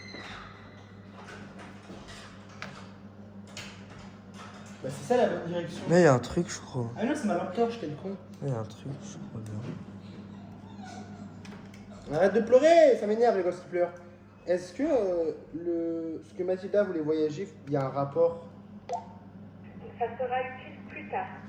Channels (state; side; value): identical; both; correlation 1.00